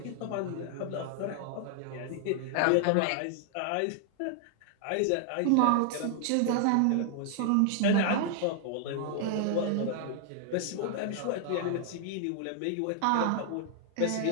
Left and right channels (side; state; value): both; different; correlation 0.00